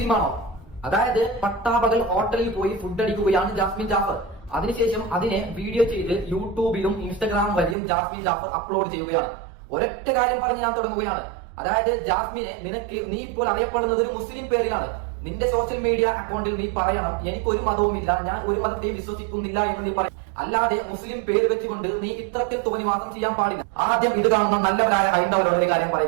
അതായത് പട്ടാപകൽ ഹോട്ടലിൽ പോയി ഫുഡ് അടിക്കുകയാണ് ജാസ്മിൻ ജാഫർ. അതിനുശേഷം അതിനെ വീഡിയോ ചെയ്ത് യൂട്യൂബിലും ഇൻസ്റ്റഗ്രാം വഴിയും ജാസ്മിൻ ജാഫർ അപ്ലോഡ് ചെയ്യുകയാണ്. ഒരൊറ്റ കാര്യം പറഞ്ഞ് ഞാൻ തുടങ്ങുകയാണ്. അതായത് ജാസ്മിനെ, നിനക്ക് നീ ഇപ്പോൾ അറിയപ്പെടുന്നത് ഒരു മുസ്ലിം പേരിലാണ്. നിന്റെ സോഷ്യൽ മീഡിയ അക്കൗണ്ടിൽ നീ പറയണം, എനിക്കൊരു മതവുമില്ല, ഞാൻ ഒരു മതത്തെയും വിശ്വസിക്കുന്നില്ല എന്ന് നീ പറയും. അല്ലാതെ മുസ്ലിം പേര് വെച്ചുകൊണ്ട് നീ ഇത്തരത്തിൽ തോന്നിവാസം ചെയ്യാൻ പാടില്ല. ആദ്യം ഇത് കാണുന്ന നല്ലവരായ ഹൈന്ദവരോട് ഒരു കാര്യം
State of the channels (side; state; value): left; drops out; at 7.8 s